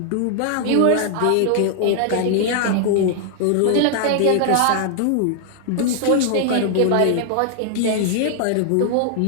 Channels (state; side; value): different; both; correlation 0.00